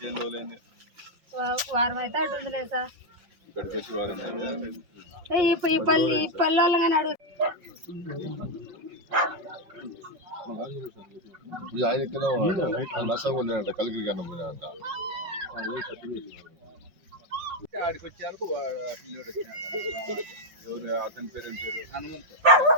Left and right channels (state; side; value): late; left; 5.3 ms